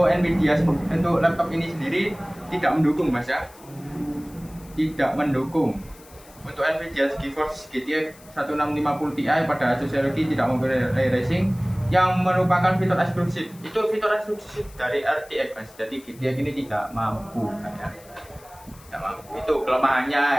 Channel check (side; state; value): left; noise; hiss, 24 dB below the sound